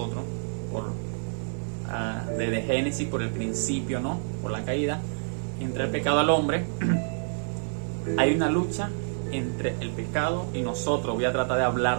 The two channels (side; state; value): left; silent; 60 dB below the other